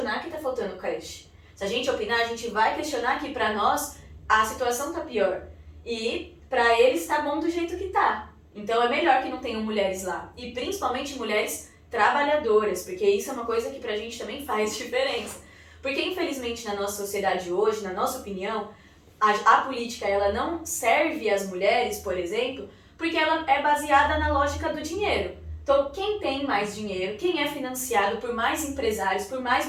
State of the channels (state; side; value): identical; both; correlation 1.00